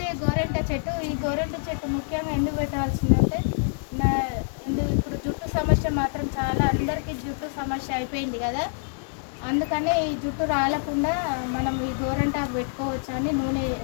గోరెంట చెట్టు. ఈ గోరెంట చెట్టు ముఖ్యంగా ఎందుకు పెట్టాల్సిందంటే ఇప్పుడు జుట్టు సమస్య మాత్రం చాలా అందరికీ జుట్టు సమస్య అయిపోయింది కదా, అందుకని ఈ జుట్టు రాలకుండా మనం ఈ గోరెంటాకు పెట్టుకోవచ్చు అని నూనె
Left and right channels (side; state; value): right; silent; digital silence